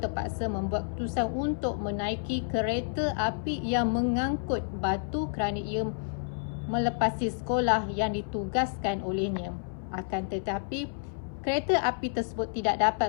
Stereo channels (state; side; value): silent; right; 58 dB below the other